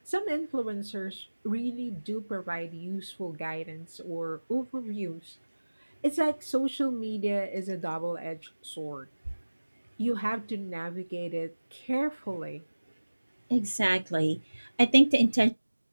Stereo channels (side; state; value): both; inverted; correlation -1.00